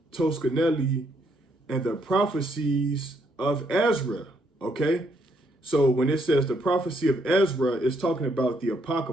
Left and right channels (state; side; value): normal; both; correlation 0.73